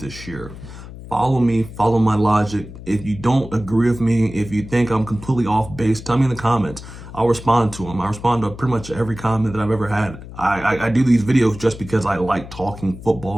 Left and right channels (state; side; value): noise; left; hum, 14 dB below the sound